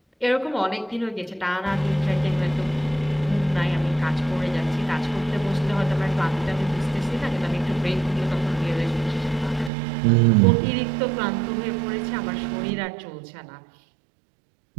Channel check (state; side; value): drops out; left; at 9.7 s